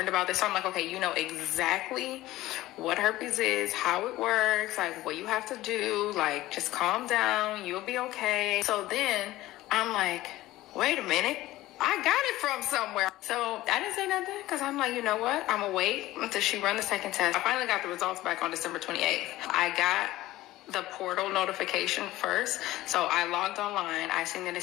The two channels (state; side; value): quieter; right; 16.6 dB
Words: about this. So I'm like, okay, you know exactly what herpes is, how it works, like what you have to do, like just calm down, you'll be okay. So then I'm like, wait a minute, I got it from somewhere. So I didn't say nothing because I'm like, you know what, I'm gonna wait until she run the second test. I finally got the results back on December 28th. I got the portal notification first. So I logged online. I seen that it